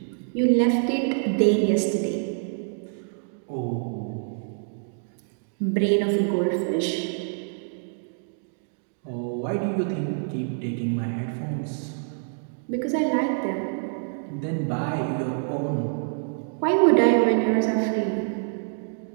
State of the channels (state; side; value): silent; left; digital silence